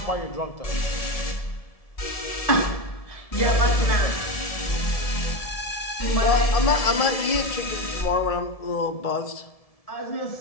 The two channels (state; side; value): late; right; 1.7 ms